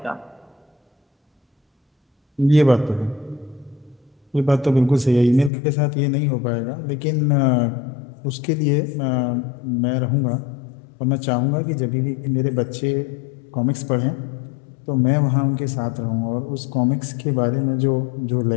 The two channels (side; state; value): right; drops out; at 5.5 s